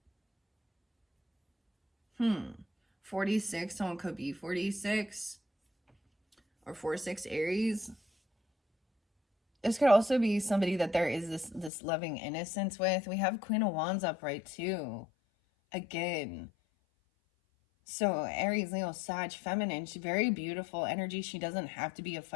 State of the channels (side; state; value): right; drops out; at 11.7 s